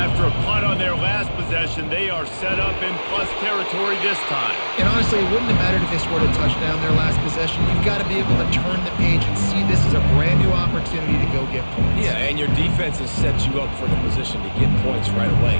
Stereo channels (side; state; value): both; inverted; correlation -1.00